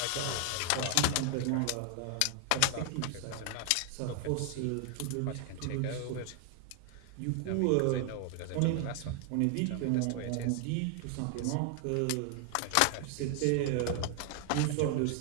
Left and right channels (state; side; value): different; both; correlation 0.00